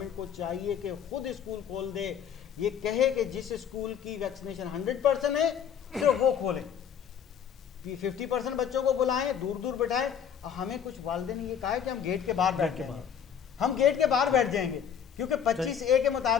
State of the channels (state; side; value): quieter; right; 8.2 dB